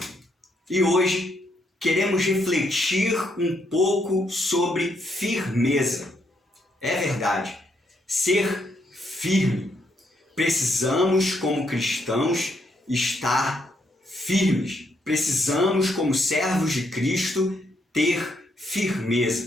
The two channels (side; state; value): both; normal; correlation 0.75